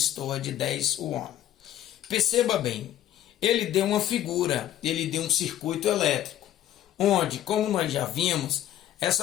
de 10 ohm? Perceba bem, ele deu uma figura, ele deu um circuito elétrico, onde, como nós já vimos,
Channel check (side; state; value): right; quieter; 12.1 dB